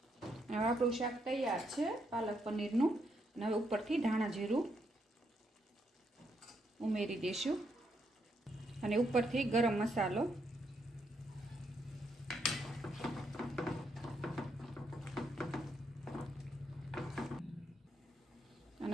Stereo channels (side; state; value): both; normal; correlation 0.77